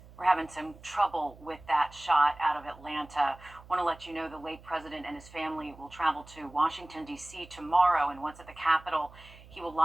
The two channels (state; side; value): noise; right; hum, 21 dB below the sound